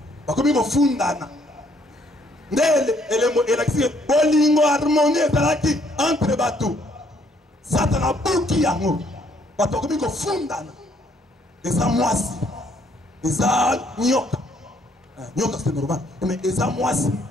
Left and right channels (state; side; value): normal; both; correlation 0.67